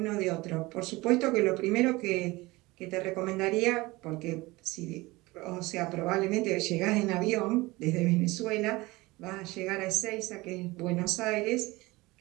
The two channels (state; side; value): quieter; left; 21.5 dB